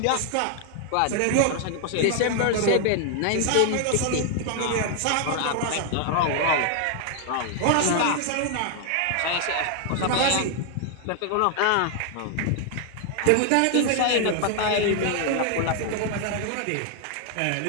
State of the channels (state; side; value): different; both; correlation 0.00